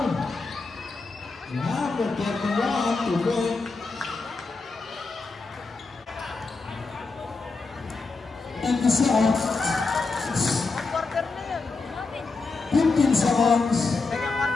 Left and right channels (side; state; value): right; quieter; 4.0 dB